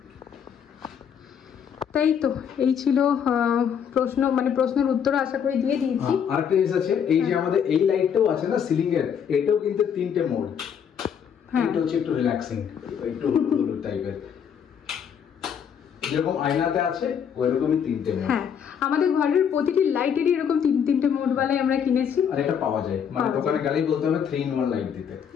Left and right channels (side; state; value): right; quieter; 7.9 dB